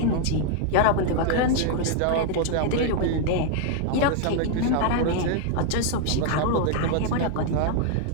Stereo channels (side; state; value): both; different; correlation 0.00